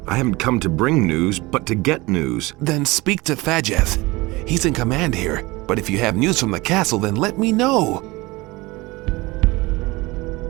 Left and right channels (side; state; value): left; quieter; 22.3 dB